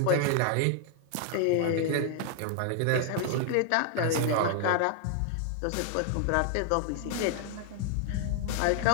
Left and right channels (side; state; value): both; different; correlation 0.00